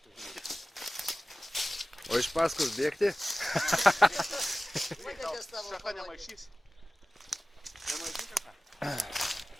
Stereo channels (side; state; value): both; normal; correlation 0.97